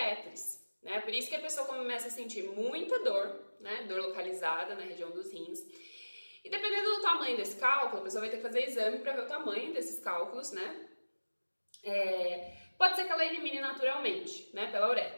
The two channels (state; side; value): inverted; both; correlation -1.00